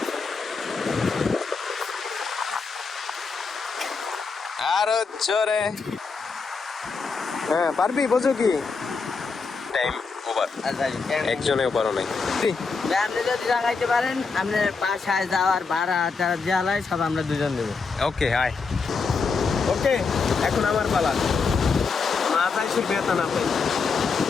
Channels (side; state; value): right; quieter; 4.8 dB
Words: আরো জোরে। হ্যাঁ পারবি, বোঝো কি টাইম ওভার। একজনেও পারো নাই। আপনি যদি লাগাইতে পারেন আপনার বাসায় যাওয়ার ভাড়া টাড়া জ্বালায় সব আমরা দুজন দেবো। ওকে হাই। ওকে, এখন আমার পালা। মাথায় সে ব্যথা না পাই।